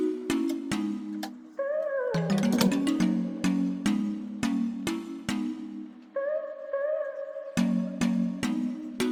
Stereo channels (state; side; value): identical; both; correlation 1.00